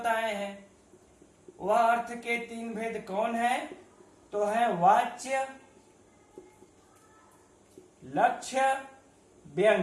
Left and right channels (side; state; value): both; identical; correlation 1.00